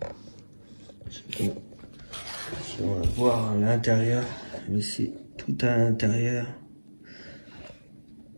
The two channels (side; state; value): both; inverted; correlation -1.00